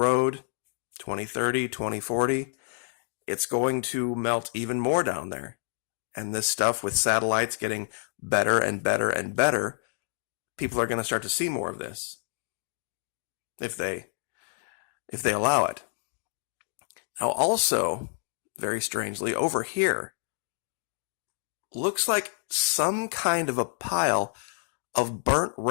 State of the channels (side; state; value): right; silent; digital silence